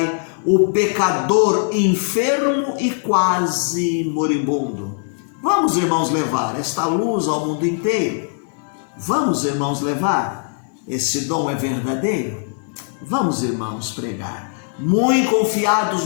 o pecador enfermo e quase moribundo. Vamos, irmãos, levar esta luz ao mundo inteiro. Vamos, irmãos, levar. Esse dom é verdadeiro. Vamos, irmãos, pregar, muito confiados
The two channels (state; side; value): silent; right; 55 dB below the other